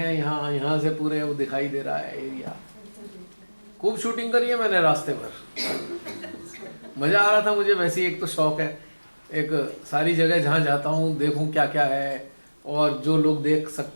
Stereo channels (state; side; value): inverted; both; correlation -1.00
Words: यहाँ से पूरे वो दिखाई दे रहा है एरिया। खूब शूटिंग करी है मैंने रास्ते भर, मज़ा आ रहा था मुझे। वैसे एक तो शौक है, एक सारी जगह जहाँ जाता हूँ देखूँ क्या क्या है और जो लोग देख